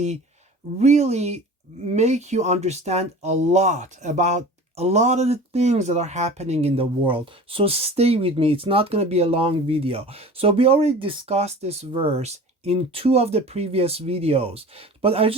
really make you understand a lot about a lot of the things that are happening in the world. So stay with me. It's not going to be a long video. So we already discussed this verse in two of the previous videos, but I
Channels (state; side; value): normal; both; correlation 0.39